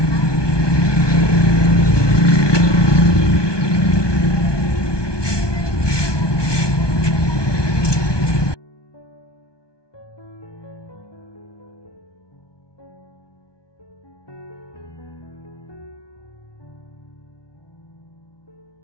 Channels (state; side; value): late; right; 1.2 ms